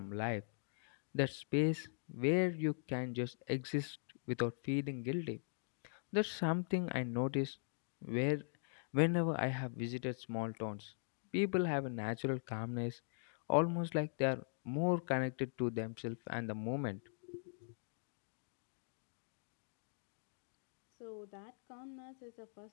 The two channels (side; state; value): right; silent; digital silence